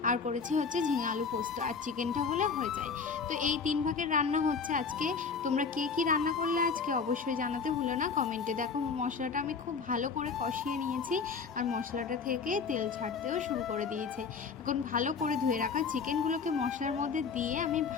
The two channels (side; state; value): right; quieter; 5.4 dB